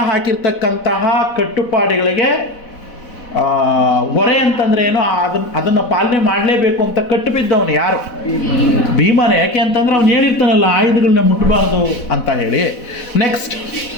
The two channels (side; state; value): right; late; 4.1 ms